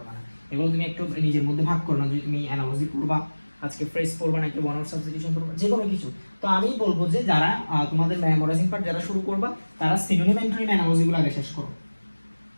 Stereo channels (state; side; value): inverted; both; correlation -1.00